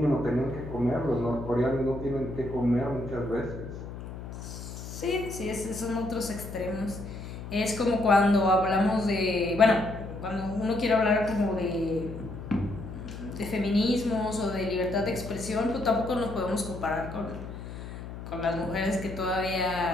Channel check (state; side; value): noise; left; hum, 10 dB below the sound